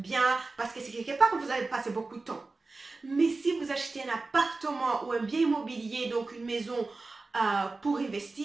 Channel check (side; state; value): left; quieter; 3.6 dB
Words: parce que c'est quelque part où vous allez passer beaucoup de temps. Mais si vous achetez un appartement ou un bien immobilier, donc une maison pour